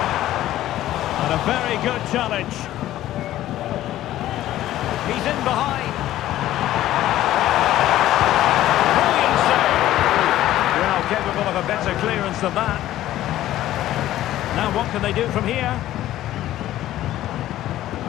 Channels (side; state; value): right; quieter; 13.9 dB